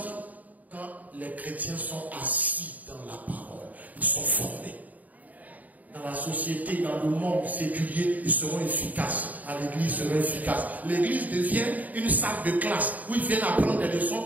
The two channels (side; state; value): left; late; 0.076 ms